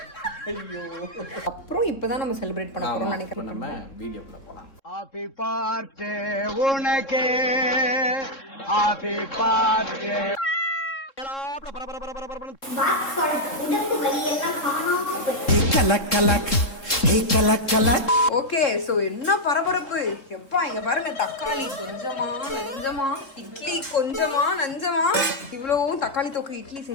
ஐயோ, அப்புறம் இப்பதான் நம்ம செலிப்ரேட் பண்ண போறோம் நினைக்கிறேன். நம்ம வீடியோக்குள்ள போலாம். ஹாப்பி பர்த்டே உனக்கு, ஹாப்பி பர்த்டே. ஓகே, சோ என்ன பரபரப்பு எப்பா. இங்க பாருங்க, தக்காளி கொஞ்சமா நஞ்சமா, இட்லி கொஞ்சமா நஞ்சமா, இவ்வளவும் தக்காளி தொக்கு இட்லி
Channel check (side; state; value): right; late; 3.7 ms